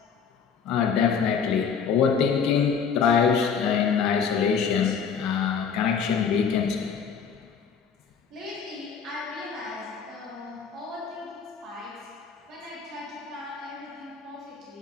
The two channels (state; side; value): quieter; right; 6.6 dB